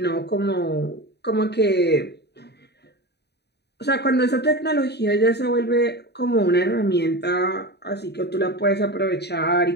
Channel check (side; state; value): right; late; 0.48 ms